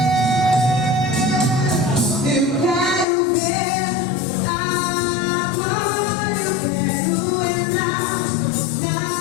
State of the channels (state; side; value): drops out; right; at 3.1 s